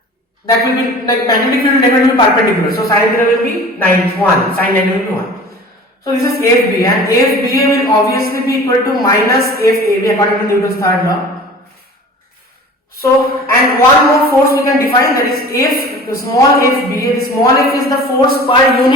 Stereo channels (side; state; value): both; normal; correlation 0.42